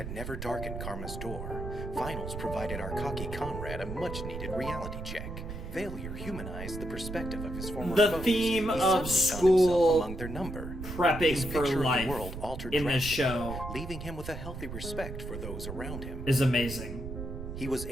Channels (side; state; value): right; noise; rumble, 7 dB below the sound